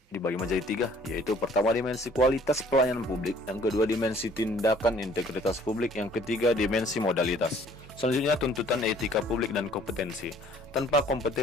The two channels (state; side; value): normal; both; correlation 0.56